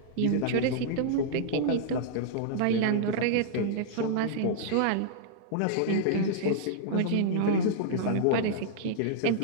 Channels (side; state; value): both; different; correlation -0.02